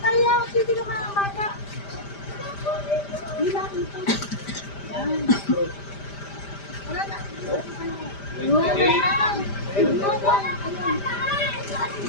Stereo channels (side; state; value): right; late; 5.0 ms